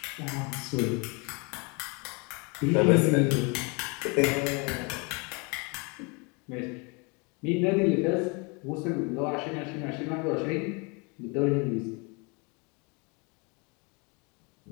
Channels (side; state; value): right; quieter; 31.2 dB